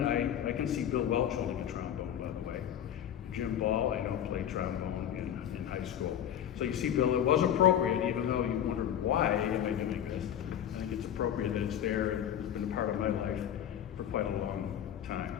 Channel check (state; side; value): quieter; right; 10.1 dB